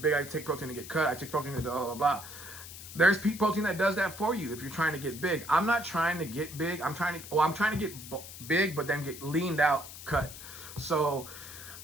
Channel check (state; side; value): noise; left; hiss, 13 dB below the sound